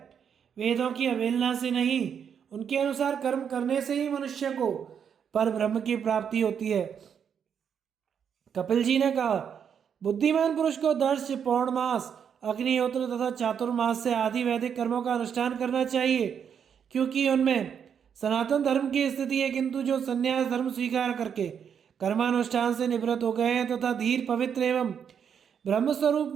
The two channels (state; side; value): quieter; left; 7.7 dB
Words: वेदों की अवहेलना से नहीं, उनके अनुसार कर्म करने से ही मनुष्य को पर ब्रह्म की प्राप्ति होती है। कपिल जी ने कहा, बुद्धिमान पुरुष को दर्श, पौर्णमास, अग्निहोत्र तथा चातुर्मास से आदि वैदिक कर्मों का अनुष्ठान करना चाहिए, क्योंकि उनमें सनातन धर्म की स्थिति है। किंतु जो संन्यास धर्म स्वीकार करके कर्मानुष्ठान से निवृत्त हो गए हैं तथा धीर, पवित्र एवं ब्रह्म स्वरूप